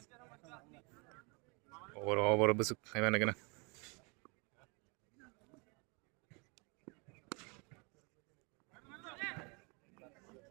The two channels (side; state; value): left; quieter; 31.1 dB